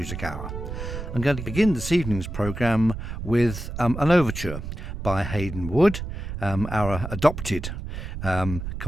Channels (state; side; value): noise; right; rumble, 7 dB below the sound